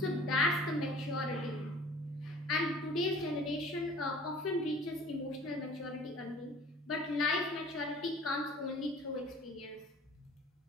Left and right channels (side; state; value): both; normal; correlation 0.48